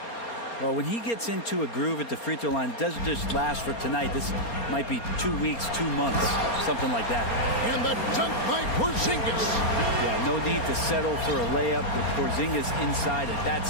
Well, when he gets into a groove at the free throw line, it doesn't just last for tonight. This might be 2 weeks, 2 months, something like that. And the dunk by Porzingis. Yeah, no need to settle for a layup with Porzingis inside at that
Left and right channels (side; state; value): right; late; 4.3 ms